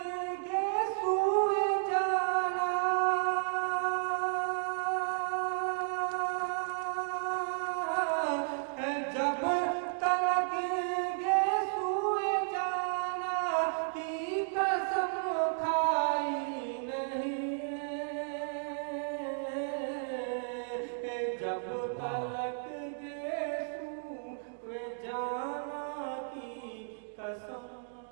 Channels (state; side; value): silent; left; digital silence